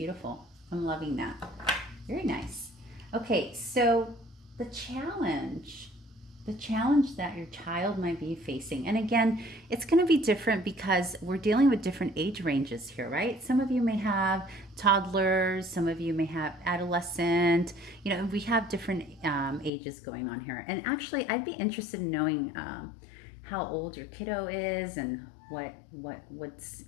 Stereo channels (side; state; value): right; drops out; at 19.7 s